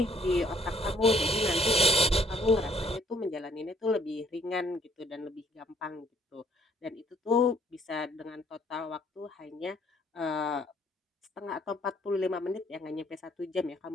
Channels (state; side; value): normal; both; correlation 0.62